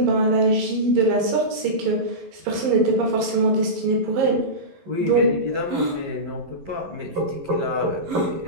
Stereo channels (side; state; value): left; late; 11 ms